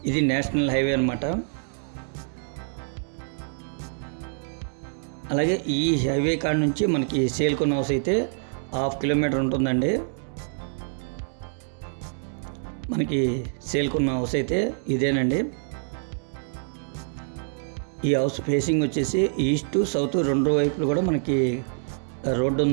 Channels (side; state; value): left; silent; digital silence